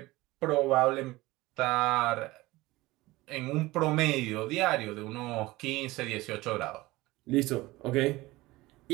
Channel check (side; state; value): left; quieter; 19.6 dB